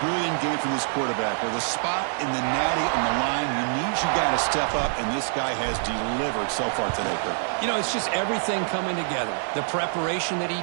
brilliant game from this quarterback. With a spot in the natty on the line, you got to step up, and this guy has delivered so far today, Kurt. You know, it's just everything coming together. The preparation that he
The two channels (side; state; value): left; silent; digital silence